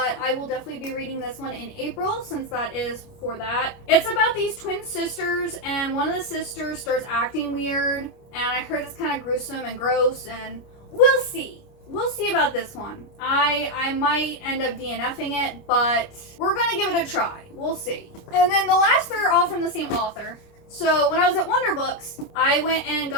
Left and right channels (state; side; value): late; right; 29 ms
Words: I will definitely be reading this one in April since that is for that. It's about these twin sisters, and one of the sisters starts acting weird, and I heard it's kind of gruesome and gross, and we'll see. We'll see about this one. I might end up DNFing it, but we're gonna give it a try. We'll see. And then the last three are all from the same author. So when I was at Wonder Books, I went and